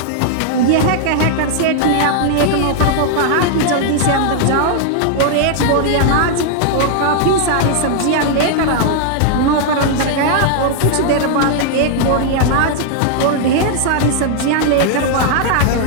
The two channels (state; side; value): different; both; correlation 0.00